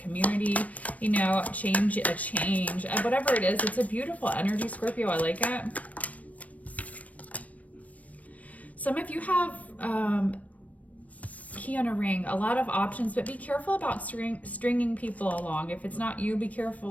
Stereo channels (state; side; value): late; right; 0.069 ms